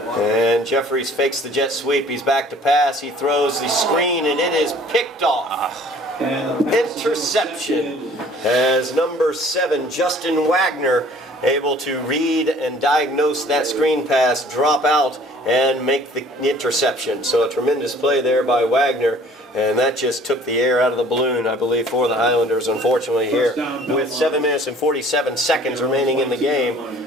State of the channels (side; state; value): both; normal; correlation 0.53